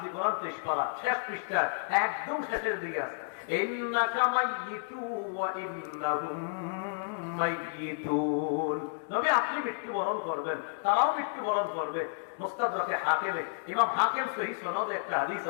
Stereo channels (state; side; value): silent; right; 57 dB below the other